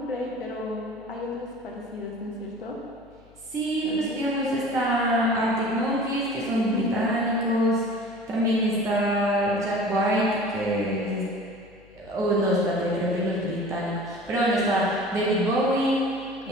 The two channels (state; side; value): noise; left; hum, 27 dB below the sound